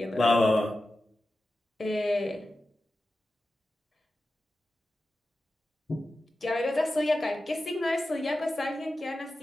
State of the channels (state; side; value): normal; both; correlation 0.93